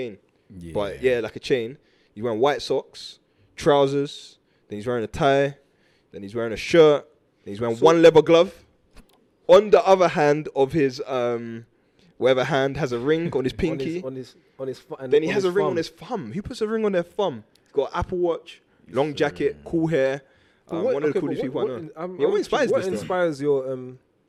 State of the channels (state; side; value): identical; both; correlation 1.00